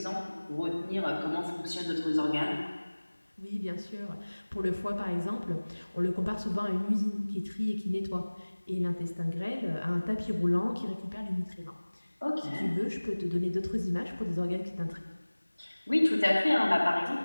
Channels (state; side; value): inverted; both; correlation -1.00